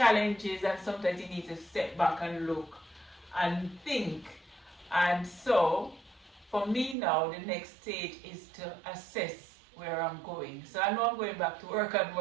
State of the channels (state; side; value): drops out; left; at 7.0 s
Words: and sometimes you need to step back and look and think. And so for me now, the next stage is to assess where I'm going. So I know I'm going back to work on